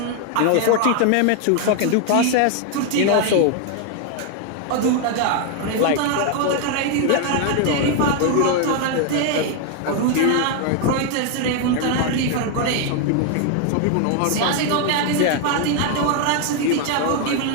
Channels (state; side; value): different; both; correlation 0.01